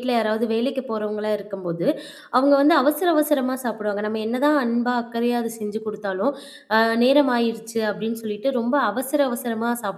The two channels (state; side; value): identical; both; correlation 1.00